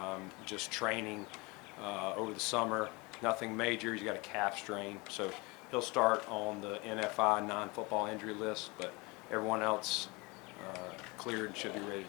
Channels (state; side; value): quieter; right; 26.0 dB